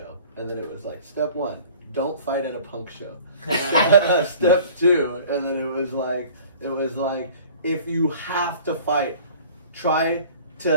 and then it was like step 1, don't fight at a punk show. Step 2, and then it was like if you have to fight, try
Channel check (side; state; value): both; inverted; correlation -0.48